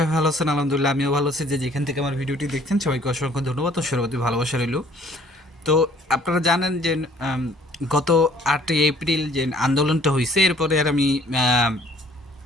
ভালো আছেন। আলহামদুলিল্লাহ আমিও ভালো আছি। যে যেখান থেকে আমার ভিডিওটি দেখছেন সবাইকে অসংখ্য ধন্যবাদ ও সর্বতি ভালোবাসা রইল। তো আপনারা জানেন যে আম, গত 8ই এপ্রিল যে আন্দোলনটা হয়েছে এরপরে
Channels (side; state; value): both; normal; correlation 0.57